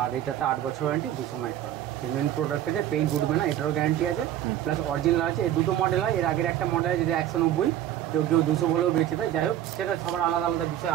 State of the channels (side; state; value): left; quieter; 11.8 dB